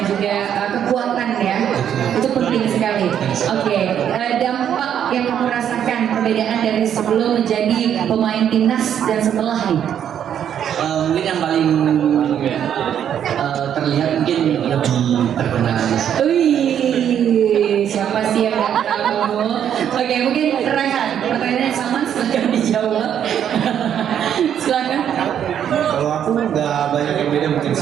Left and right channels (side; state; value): left; quieter; 9.3 dB